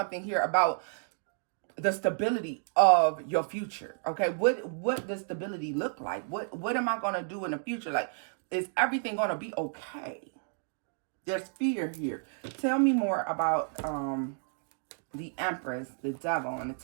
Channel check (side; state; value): left; silent; 57 dB below the other